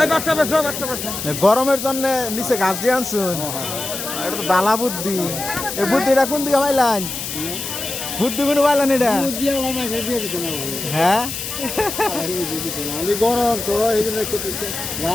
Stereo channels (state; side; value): noise; left; hiss, 6 dB below the sound